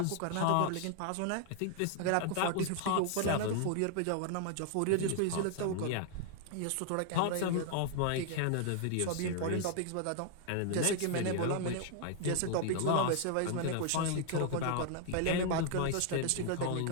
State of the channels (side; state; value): both; different; correlation 0.00